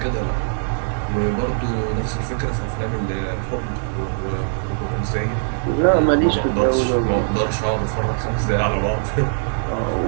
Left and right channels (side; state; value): left; silent; digital silence